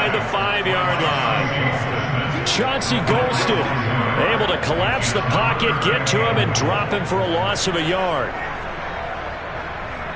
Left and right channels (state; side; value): identical; both; correlation 1.00